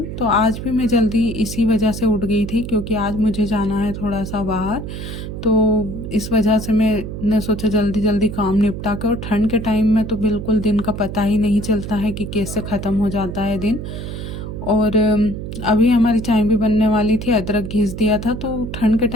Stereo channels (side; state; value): right; noise; hum, 7 dB below the sound